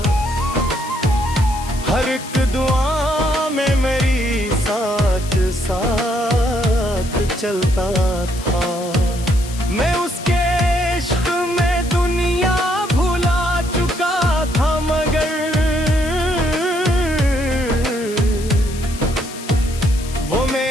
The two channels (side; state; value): left; noise; hiss, 14 dB below the sound